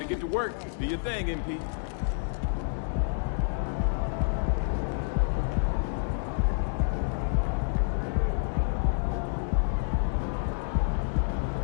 get to work. Do your thing, MP.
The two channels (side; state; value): right; silent; digital silence